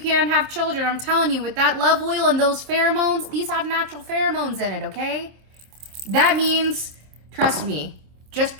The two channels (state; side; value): late; left; 27 ms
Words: have children, I'm telling you, with that love oil and those pheromones, these have natural pheromones in it, okay? That means, trust me, just